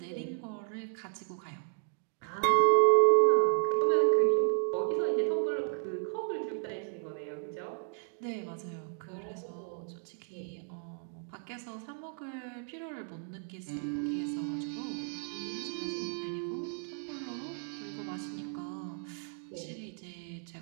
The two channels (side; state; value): left; silent; 56 dB below the other